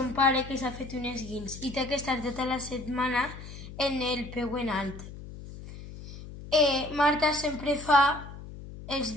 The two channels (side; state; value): left; noise; hum, 13 dB below the sound